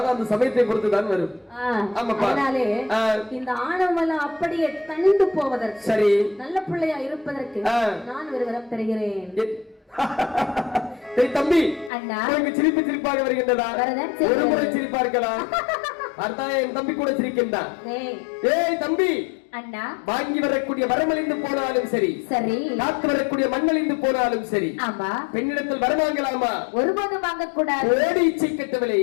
அந்த சமயத்தை பொறுத்து தான் வரும் அதனாலே இந்த ஆணவம் எல்லாம் அப்படியே தணிந்து போவதற்கு சரி நல்ல பிள்ளையா இருப்பதற்கு நான் ஒரு வரம் தருகிறேன் தம்பி அண்ணா சிரிப்பு சிரிப்பாக வருகின்றதா ஒரு முறை சிரிப்பா இருக்கலாம் அர்த்தம் என் தம்பி கூட சிரிக்கின்றான் ஏய் தம்பி அண்ணா வாங்கி வரக்கூடிய வரமழிந்து போனாலும் சரி சரி காத்து வரக்கூடிய மண்ணழிந்து போனாலும் சரி ஆமா பெண்ணிடத்தில் வர வாங்கலாமா ஒருபோதும் வாங்கக்கூடாது ஓடி இச்சை கட்டவில்லை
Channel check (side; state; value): right; drops out; at 11.9 s